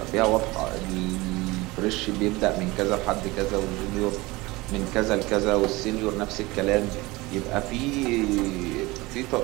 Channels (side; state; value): left; quieter; 21.9 dB